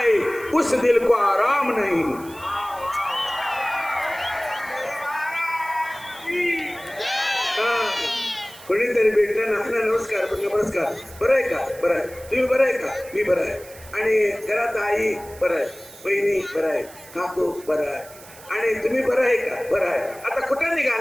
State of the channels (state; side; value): noise; right; hiss, 20 dB below the sound